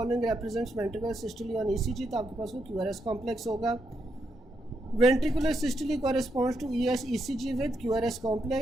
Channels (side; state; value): both; normal; correlation 0.81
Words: represents ventricular systole on E C G. तो आपके पास वो क्यू आर एस कॉम्प्लेक्स होगा। Ventricular systole corresponds to E S E C G with Q R S